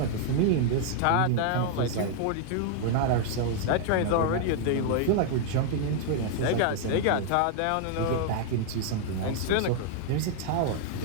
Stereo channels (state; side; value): different; both; correlation 0.00